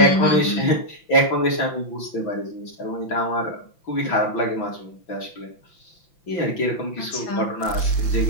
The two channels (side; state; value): right; late; 5.9 ms